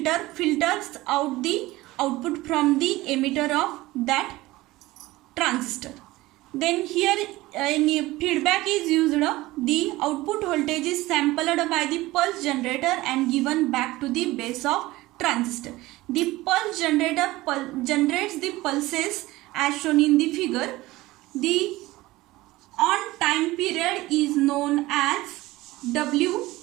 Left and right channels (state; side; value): quieter; left; 18.7 dB